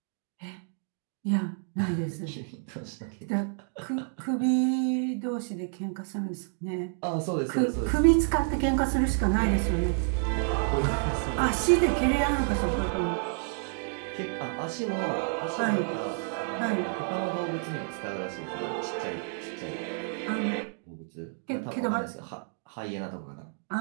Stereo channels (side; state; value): left; silent; 57 dB below the other